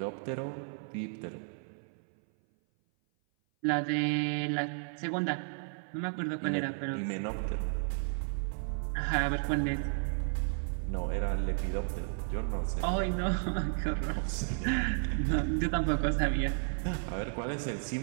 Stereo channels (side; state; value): left; silent; 56 dB below the other